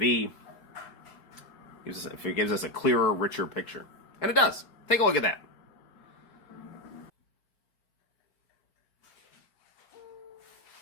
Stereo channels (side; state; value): right; late; 4.6 ms